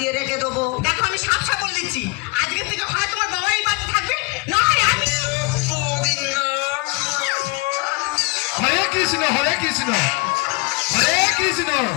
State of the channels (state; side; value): quieter; right; 26.2 dB